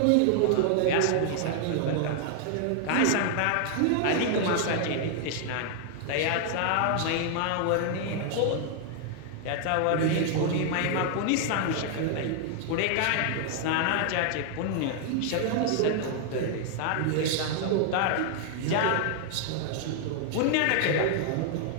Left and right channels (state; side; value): different; both; correlation 0.00